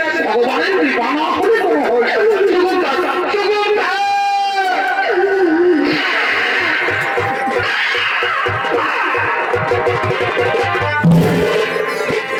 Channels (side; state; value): both; identical; correlation 1.00